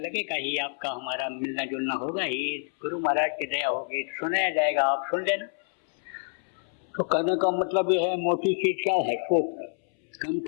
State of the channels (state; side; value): silent; right; 60 dB below the other